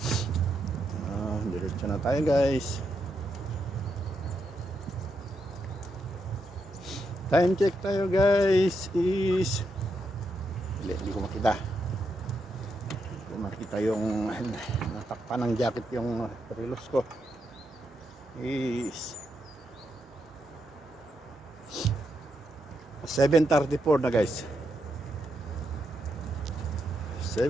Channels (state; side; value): normal; both; correlation 0.82